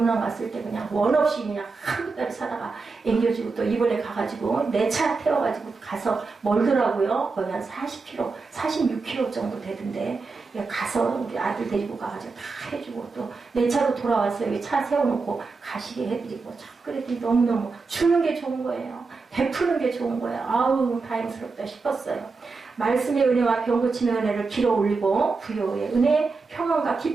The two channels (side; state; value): left; quieter; 4.3 dB